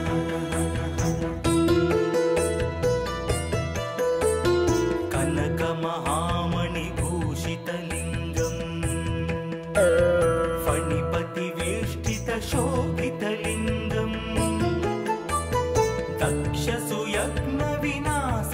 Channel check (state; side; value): identical; both; correlation 1.00